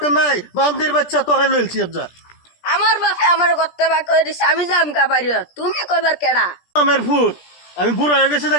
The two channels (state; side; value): late; right; 17 ms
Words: নাই বান্দির বাচ্চা তোরে লইলছি যা আমার বাপে আমার করতে বা কই দিছে আমি যাম কা বাইরে তুমি কইবার কেডা আমার ভূত আমি বুড়া হয়ে গেছি